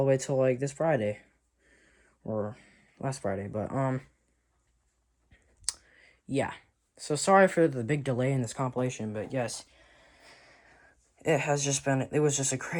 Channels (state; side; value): identical; both; correlation 1.00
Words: way till this Friday. Or last Friday, but yeah. So sorry for the big delay in this compilation, but yes, it was just a